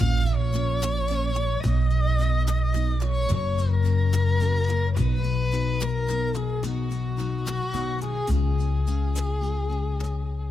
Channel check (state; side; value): normal; both; correlation 0.87